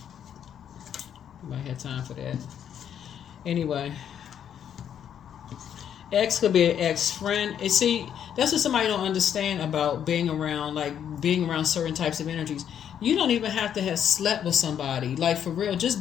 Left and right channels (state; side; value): quieter; right; 9.2 dB